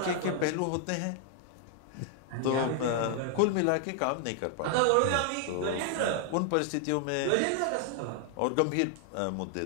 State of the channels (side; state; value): both; different; correlation 0.00